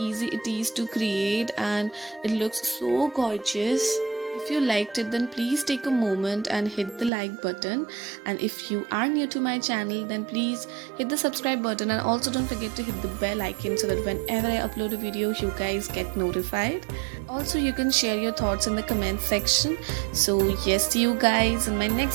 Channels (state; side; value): drops out; left; at 7.1 s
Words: it is to create, and it looks so gorgeous. If you liked it, then please take a moment and hit the like button. And if you are new to my channel, then please hit the subscribe button, and also don't forget to hit the bell icon so that whenever I upload a video, you guys get notified. Also, you can share your thoughts in the comment section. So yes, see you guys in my